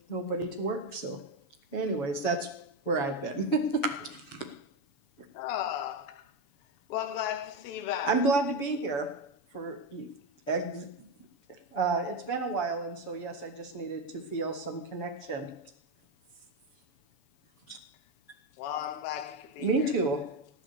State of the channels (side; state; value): right; late; 7.1 ms